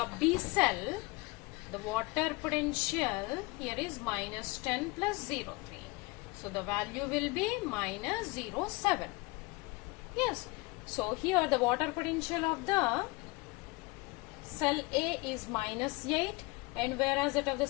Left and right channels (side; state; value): right; quieter; 24.2 dB